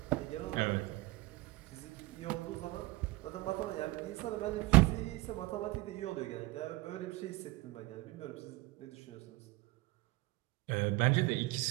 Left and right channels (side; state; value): left; quieter; 20.7 dB